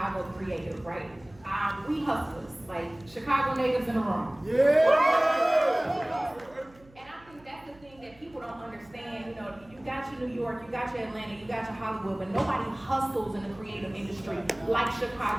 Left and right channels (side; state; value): right; noise; hum, 25 dB below the sound